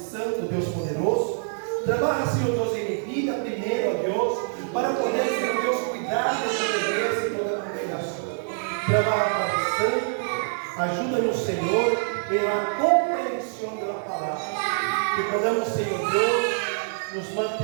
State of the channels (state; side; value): silent; left; digital silence